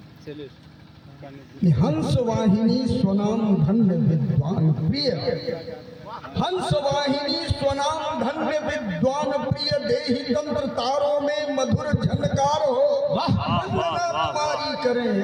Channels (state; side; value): identical; both; correlation 1.00